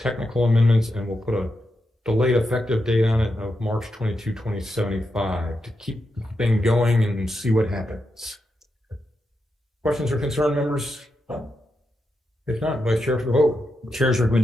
amendments, and we'll put a delayed effective date on it of March 22, 2075 to keep the thing going and see what happens. Questions or concern, members? If not, Vice Chair for the vote. Chair's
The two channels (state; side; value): normal; both; correlation 0.86